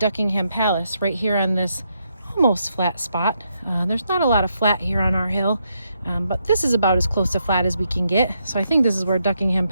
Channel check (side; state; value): both; inverted; correlation -0.79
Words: Palace, right here on this almost flat spot. There's not a lot of flat here on our hill, but this is about as close to flat as we can get, so I think this is where Duckingham